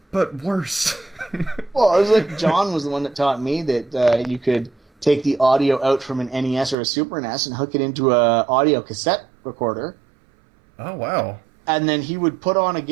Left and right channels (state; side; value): drops out; left; at 6.8 s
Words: but worse. Well, it was like John was the one that taught me that you could take the audio out from an NES or a Super NES and hook it into a audio cassette recorder. Oh, wow. And then he would put on a